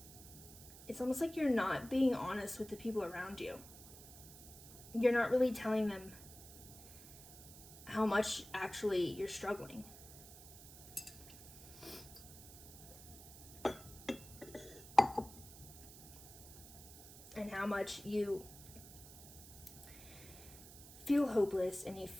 it's almost like you're not being honest with the people around you. You're not really telling them how much actually you're struggling. And how much you feel hopeless, and you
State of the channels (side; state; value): right; noise; hiss, 16 dB below the sound